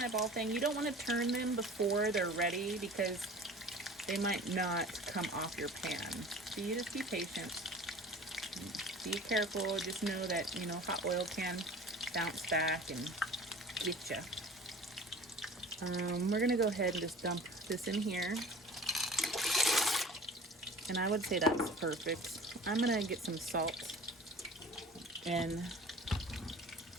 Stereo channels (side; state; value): both; normal; correlation 0.42